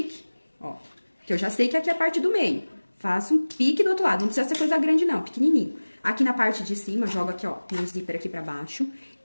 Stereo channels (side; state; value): both; inverted; correlation -1.00